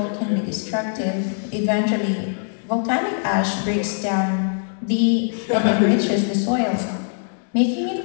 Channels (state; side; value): silent; right; digital silence